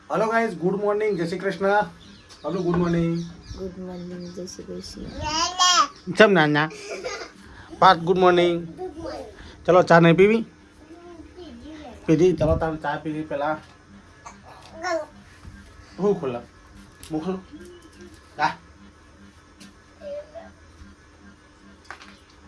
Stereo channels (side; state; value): both; identical; correlation 1.00